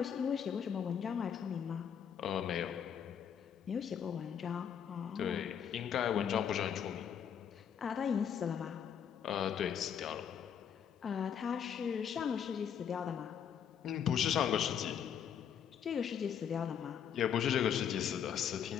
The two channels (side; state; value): right; quieter; 8.3 dB